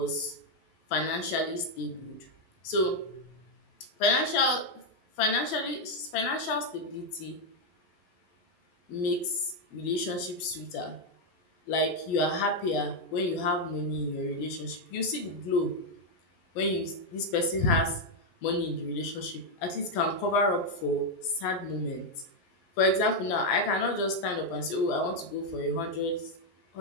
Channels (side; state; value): right; late; 12 ms